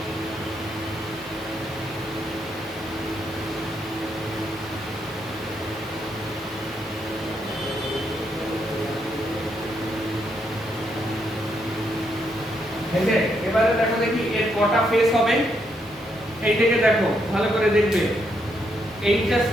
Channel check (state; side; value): normal; both; correlation 0.77